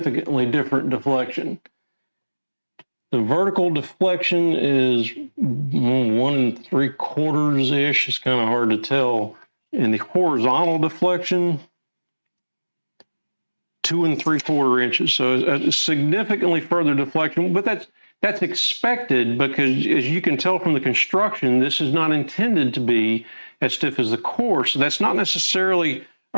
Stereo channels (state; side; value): inverted; both; correlation -1.00